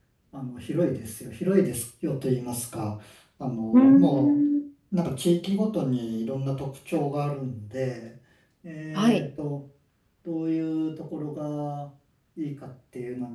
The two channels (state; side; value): identical; both; correlation 1.00